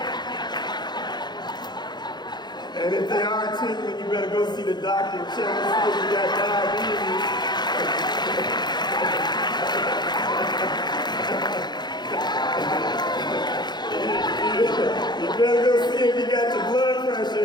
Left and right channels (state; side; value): late; right; 0.21 ms